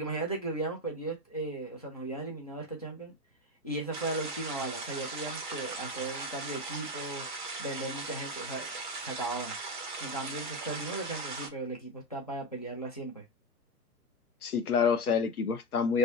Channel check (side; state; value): both; normal; correlation 0.14